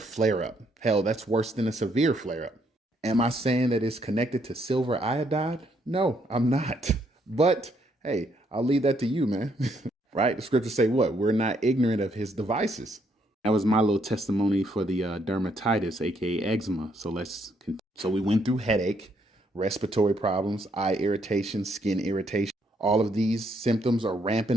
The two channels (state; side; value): normal; both; correlation 0.72